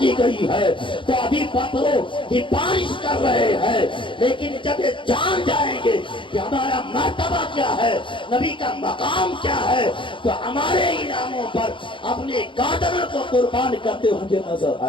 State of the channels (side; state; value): right; late; 0.24 ms